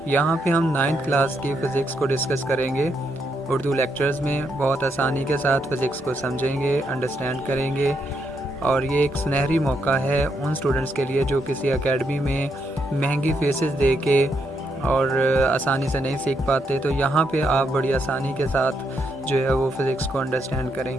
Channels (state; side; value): normal; both; correlation 0.79